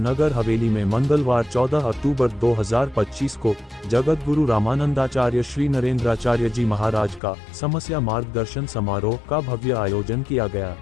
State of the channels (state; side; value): drops out; right; at 7.2 s